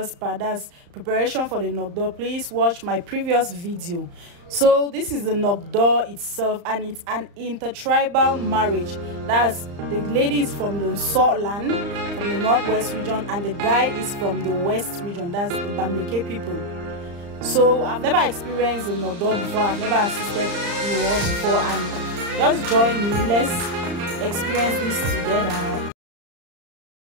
part, that's preparation for the Nogdo, please watch my previous video. So this is the Nogdo itself, and it's an intertribal marriage. That's the lady is from the Salt Land, from the northwest region, and the guy is from the west region, that's the Bamileke people. So I've never experienced a Nogdo before, I've never assisted in war before, and just join me, let's experience this together.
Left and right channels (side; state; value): left; late; 35 ms